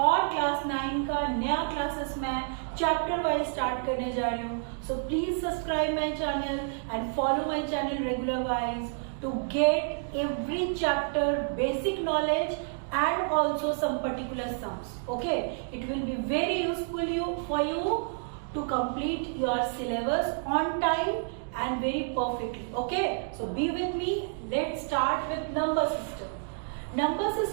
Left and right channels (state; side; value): silent; left; digital silence